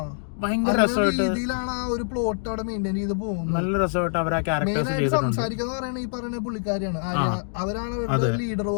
ഭയങ്കര രസമായിട്ട് രീതിയിലാണ് ആ ഒരു പ്ലോട്ട് അവിടെ മെയിൻറ്റെയിൻ ചെയ്ത് പോകുന്നത്. നല്ല രസമായിട്ട് അവർ ആ ക്യാരക്ടേഴ്സ് സംസാരിക്കാന്ന് പറയുന്നത് ഈ പറയുന്ന പുള്ളിക്കാരിയാണ്. അവരാണ് അവരുടെ ലീഡർ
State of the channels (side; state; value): right; silent; digital silence